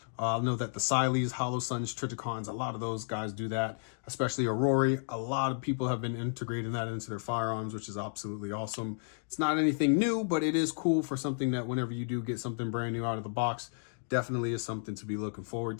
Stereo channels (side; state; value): right; silent; digital silence